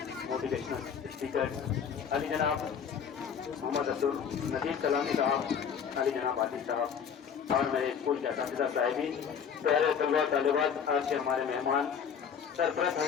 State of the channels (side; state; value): right; quieter; 7.3 dB